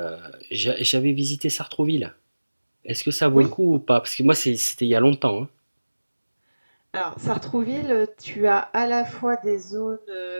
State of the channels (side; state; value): both; inverted; correlation -1.00